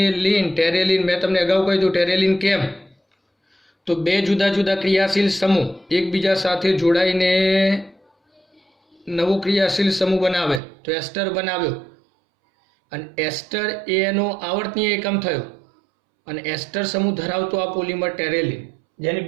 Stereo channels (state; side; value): drops out; left; at 10.6 s